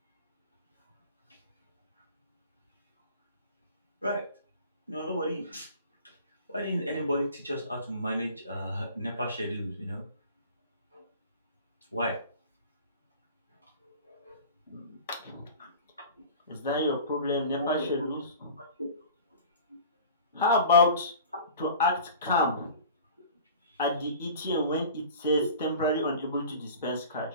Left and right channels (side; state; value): both; inverted; correlation -0.41